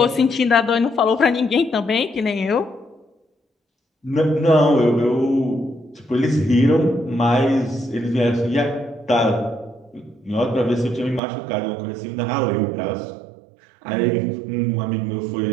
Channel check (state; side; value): drops out; left; at 11.2 s